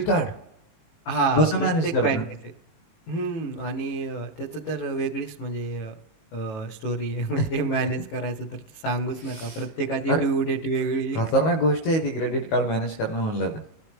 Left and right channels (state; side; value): late; right; 19 ms